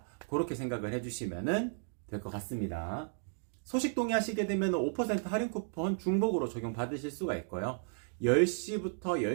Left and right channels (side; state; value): left; silent; digital silence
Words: 그렇게 생각을 해주시면 될 것 같습니다. 소식 동의하시게 되면 5% 할인 쿠폰 중복으로 적용받으실 수가 있고요. 10시부터